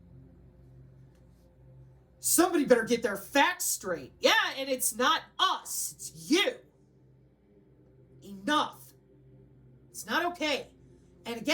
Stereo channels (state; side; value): identical; both; correlation 1.00